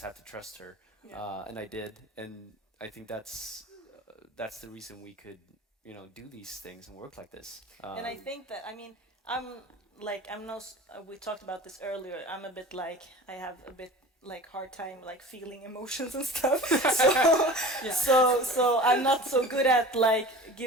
have to trust her, and I did, and I think that's the reason we could do these things and work like this. And I think that, I mean, we talked about this earlier, I'm a bit like, I have a bit like hard time like feeling emotions and stuff. So I'm not so good at like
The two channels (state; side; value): normal; both; correlation 0.39